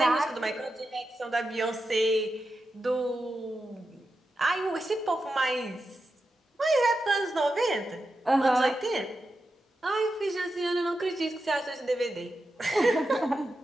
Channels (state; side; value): normal; both; correlation 0.89